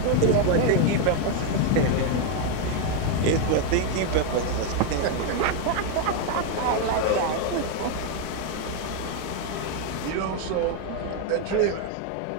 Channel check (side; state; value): both; different; correlation 0.01